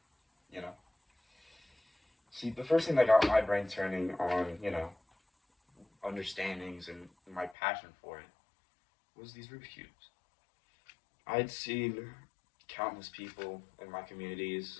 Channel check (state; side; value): drops out; right; at 7.6 s